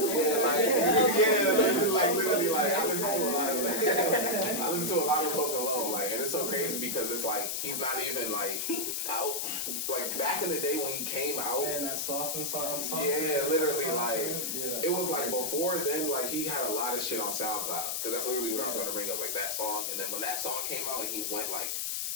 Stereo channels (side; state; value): left; noise; hiss, 1 dB below the sound